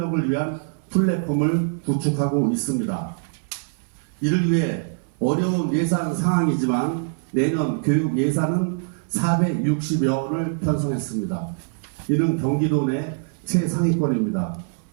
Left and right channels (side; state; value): left; silent; 58 dB below the other